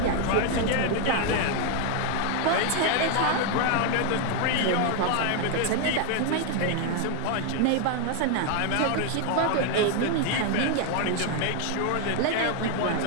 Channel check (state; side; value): different; both; correlation 0.01